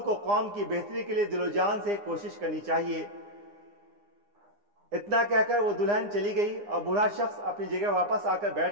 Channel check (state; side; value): late; left; 9.8 ms